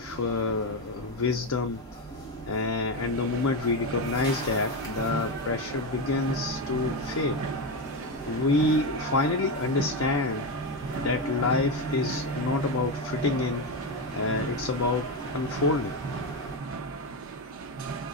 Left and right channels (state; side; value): normal; both; correlation 0.13